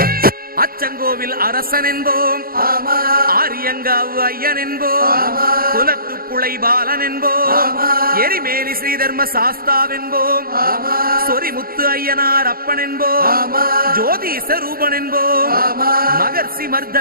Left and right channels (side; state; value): left; late; 0.43 ms